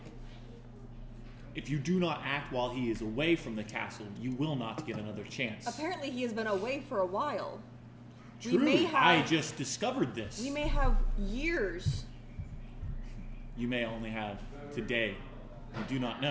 If you do not act while he is away from the castle, you will not get another chance. Apparently he has been away for a while. True, I just discovered this. We may have years. You may only have today. You do not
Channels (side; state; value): both; identical; correlation 1.00